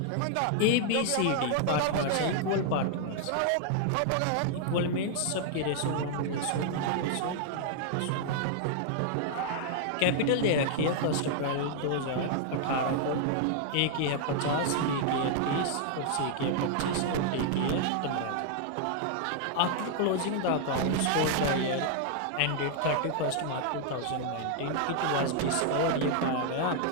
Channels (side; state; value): both; different; correlation 0.00